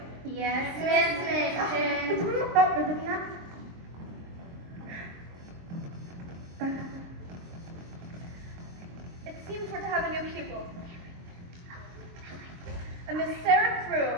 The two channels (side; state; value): left; late; 23 ms